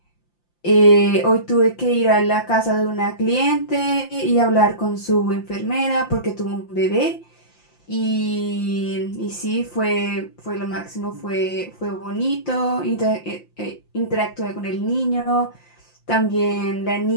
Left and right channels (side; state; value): right; late; 5.8 ms